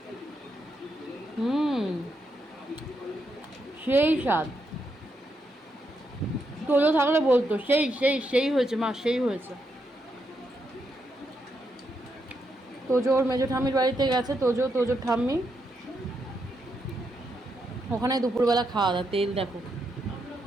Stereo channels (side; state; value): both; normal; correlation 0.81